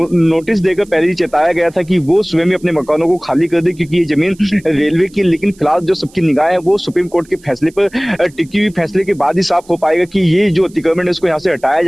देकर पहले ही चेताया गया था कि वो स्वयं ही अपने मकानों को खाली कर दे, क्योंकि ये जमीन रेलवे की। लेकिन फिलहाल जो सबकी निगाह है वो सुप्रीम कोर्ट के फैसले पर टिकी हुई। फैसले के बाद ही साफ हो पाएगा कि ये जो अतिक्रमण है उसको यहाँ से हटाया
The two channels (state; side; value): noise; right; hiss, 27 dB below the sound